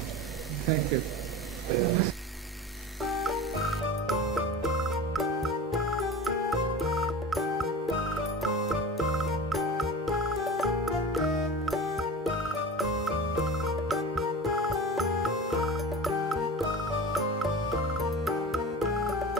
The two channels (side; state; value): both; normal; correlation 0.33